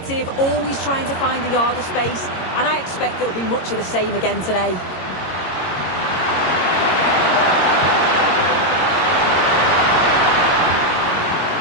always trying to find the yard of space, and I expect it'll be much of the same again today.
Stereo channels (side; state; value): right; late; 22 ms